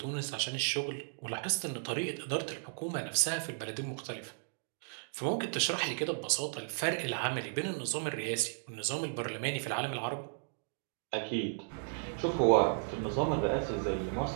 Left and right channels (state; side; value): silent; left; digital silence